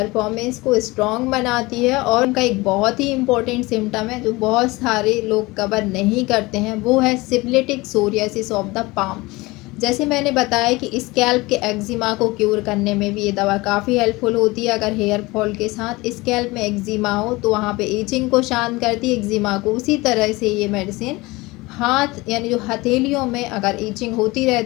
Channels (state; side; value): quieter; right; 22.1 dB